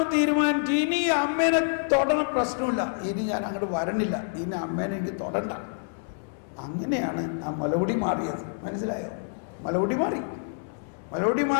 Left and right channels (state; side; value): silent; right; digital silence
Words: തീരുമാനിച്ചു, ഇനി അമ്മേനെ തൊടണ പ്രശ്നമില്ല, ഇനി ഞാൻ അങ്ങോട്ട് വരണില്ല, ഇനി അമ്മേനെ എനിക്ക് തൊടണ്ട. അങ്ങനെയാണ് ആ മുലകുടി മാറിയത്. മനസ്സിലായോ? മുലകുടി